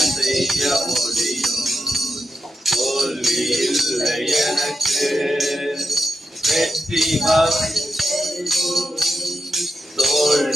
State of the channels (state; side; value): normal; both; correlation 0.88